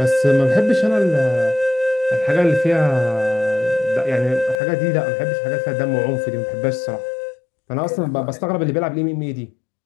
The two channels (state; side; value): drops out; right; at 4.5 s